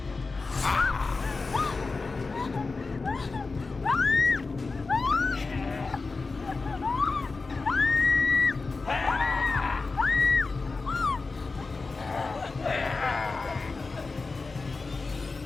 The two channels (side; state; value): right; quieter; 4.0 dB